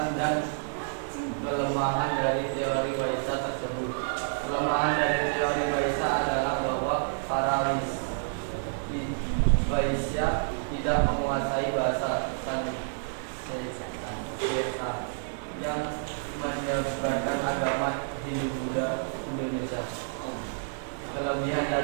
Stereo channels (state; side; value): silent; left; digital silence